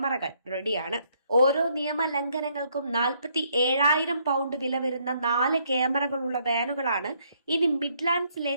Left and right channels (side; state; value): both; inverted; correlation -0.70